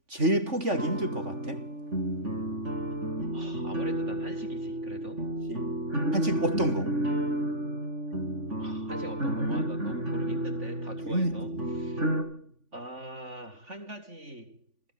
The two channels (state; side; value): late; left; 3.5 ms